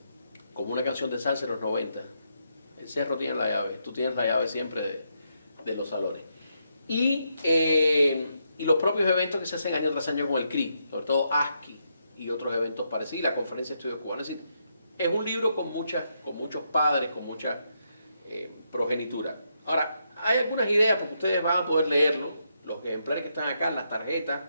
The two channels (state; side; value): inverted; both; correlation -0.80